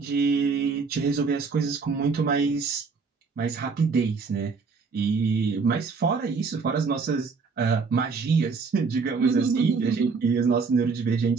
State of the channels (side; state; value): left; quieter; 4.9 dB